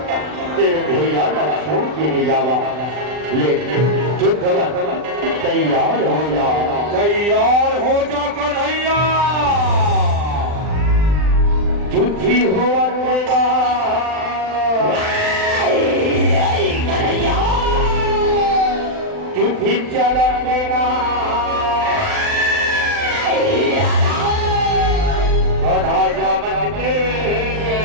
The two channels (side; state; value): left; late; 39 ms